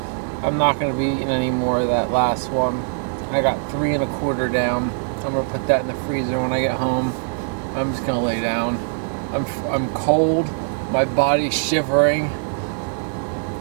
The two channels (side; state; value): left; silent; digital silence